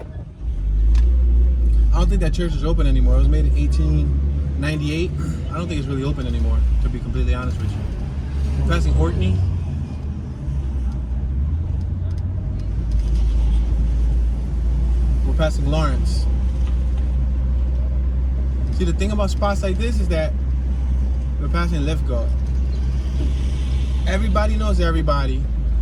I don't think that church is open anymore. It was made in 1898. I don't think it's really open anymore, to be completely honest with you. We're passing Orkney. We're passing Lawrence. See, the thing about spots like this is that we're passing Lithgow. Everybody knows everybody,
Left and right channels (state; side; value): identical; both; correlation 1.00